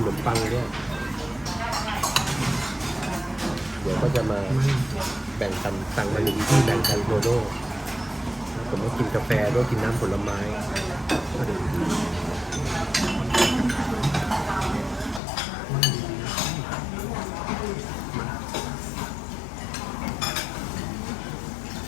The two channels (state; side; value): drops out; right; at 15.2 s